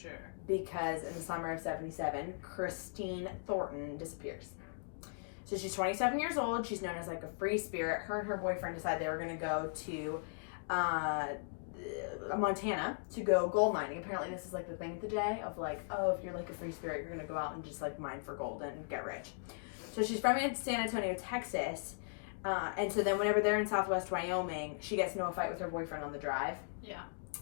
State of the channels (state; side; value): silent; right; digital silence